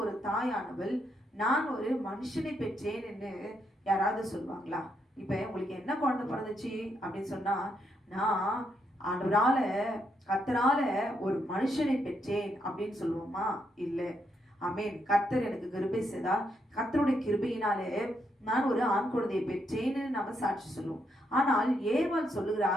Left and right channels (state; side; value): normal; both; correlation 0.78